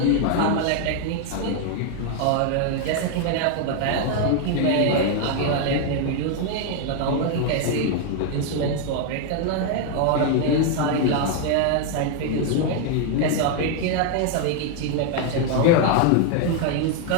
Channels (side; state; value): both; different; correlation 0.01